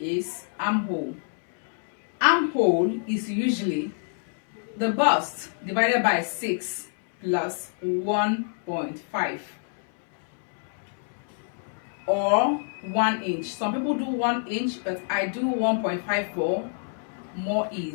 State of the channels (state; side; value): silent; right; 60 dB below the other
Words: armhole. Armhole is usually the bust divided by 6 plus 1.5 or 1 inch. Some people do 1 inch, but I do 1.5 for more